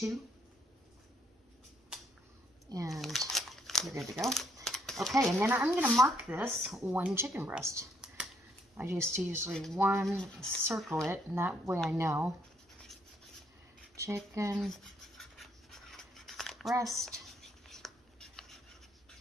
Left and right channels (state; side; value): normal; both; correlation 0.71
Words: And you're good to go. Okay, and then I'm going to mark this 1 chicken breast. I just usually circle it, and that way I know. Chicken breast.